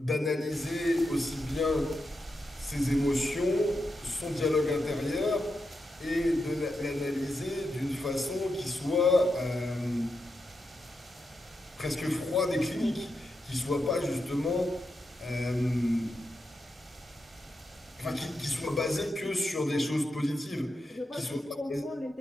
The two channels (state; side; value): normal; both; correlation 0.86